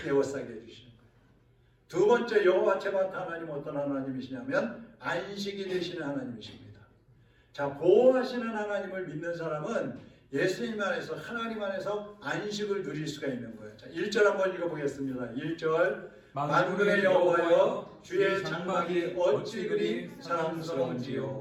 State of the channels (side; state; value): both; identical; correlation 1.00